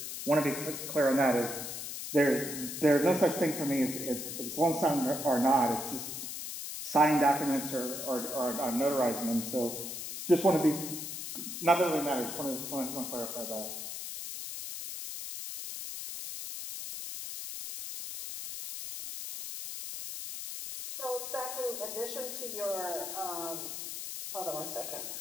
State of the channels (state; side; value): noise; left; hiss, 7 dB below the sound